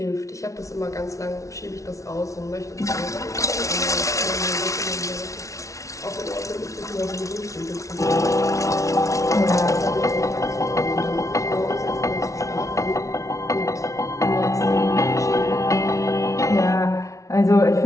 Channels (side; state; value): right; late; 0.15 ms